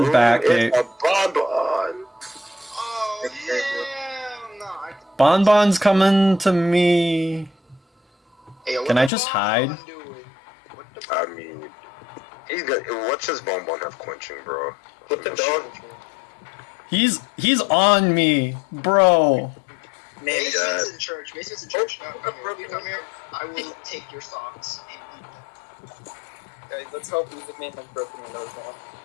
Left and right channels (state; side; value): drops out; right; at 9.1 s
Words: back. It's a bonbon. Oh, yeah. No, Bonbon's coming to me. Hey, what Can the I just Bonbon hide? doing? What the I mean, he's got. What's his bonbon have quenching, bro? What the dog? He's on me, bro. Man, Mason's in church. Mason's in church. No, come here. Come here. I will take your socks and eat them. guys, let's hope Music Man has broken windows now.